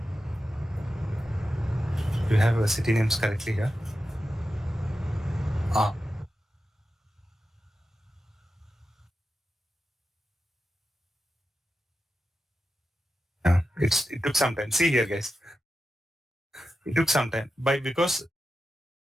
Do you have city names correctly here? Ah. Yeah. It took some time. See here, guys. It took some time because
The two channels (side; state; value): both; normal; correlation 0.91